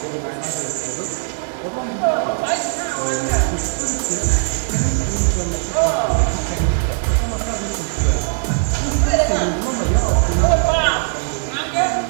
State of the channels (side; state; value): left; silent; 66 dB below the other